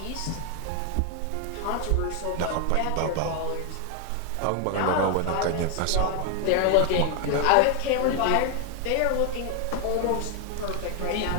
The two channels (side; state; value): both; different; correlation 0.01